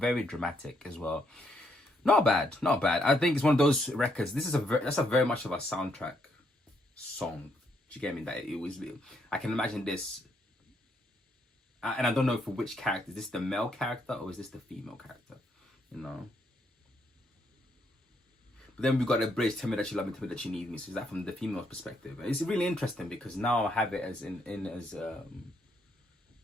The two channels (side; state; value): both; normal; correlation 0.74